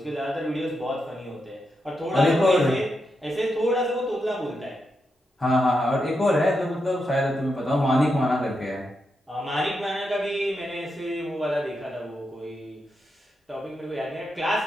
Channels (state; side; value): normal; both; correlation 0.85